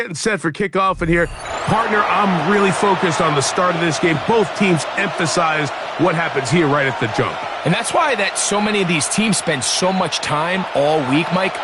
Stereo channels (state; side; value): identical; both; correlation 1.00